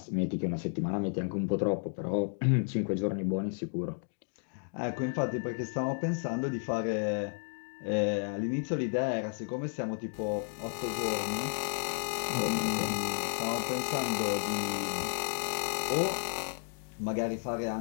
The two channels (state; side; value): silent; right; 56 dB below the other